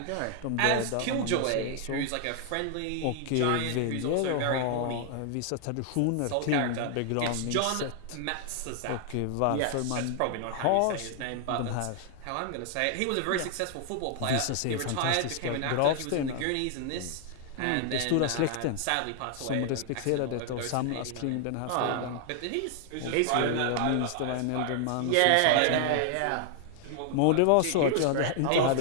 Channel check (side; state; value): both; different; correlation 0.00